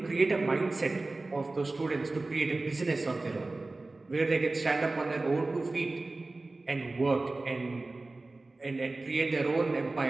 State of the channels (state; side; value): quieter; left; 3.2 dB